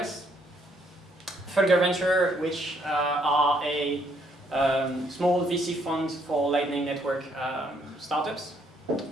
Fulgur Ventures, which are a small VC fund for Lightning Network startups.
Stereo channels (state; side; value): normal; both; correlation 0.69